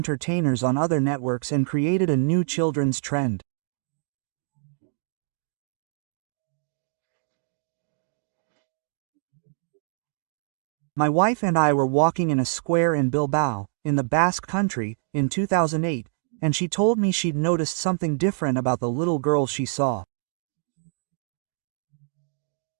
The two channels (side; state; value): left; silent; digital silence